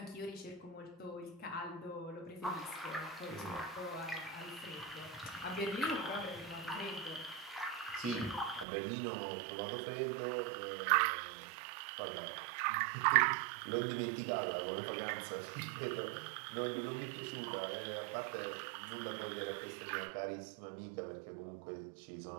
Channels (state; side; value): drops out; left; at 8.7 s